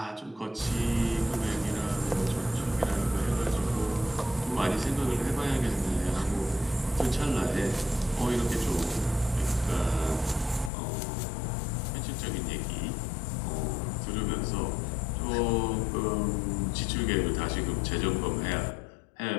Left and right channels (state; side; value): drops out; right; at 10.7 s